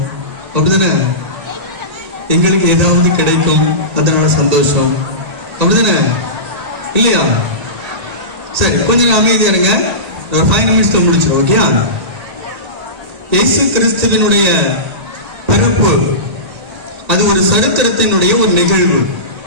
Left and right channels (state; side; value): late; left; 1.8 ms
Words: அப்படிதானே? எங்களுக்கு ஏதாவது கிடைக்கும், அதனால சந்தோஷம். அப்படிதானே? இல்லையா? சரி, கொஞ்சம் அமைதியா இருங்க. ஒரு 5 நிமிஷத்துல முடிச்சோம். ஓகே? இயேசு கிறிஸ்துவினுடைய பிறப்பு அது ஒரு சரித்திரத்தினுடைய ஒரு நிகழ்வு.